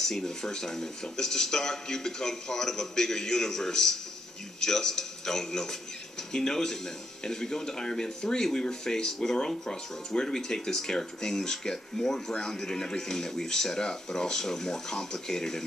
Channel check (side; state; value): both; normal; correlation 0.77